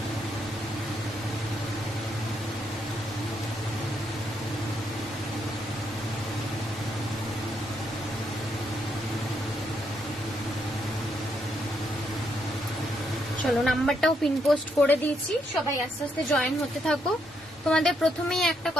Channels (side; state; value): both; normal; correlation 0.76